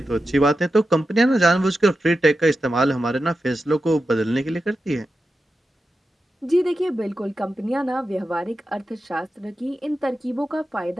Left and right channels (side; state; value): both; normal; correlation 0.91